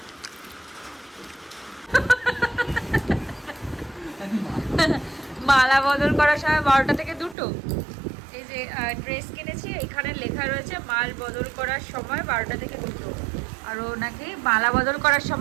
মালা বদল করার সময় 12টা থেকে 2টো। এই যে ড্রেস কিনেছি, এখানে লেখা রয়েছে মাল বদল করার সময় 12টা থেকে 2টো, আর ও নাকি মালা বদল করার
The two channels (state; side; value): drops out; left; at 7.4 s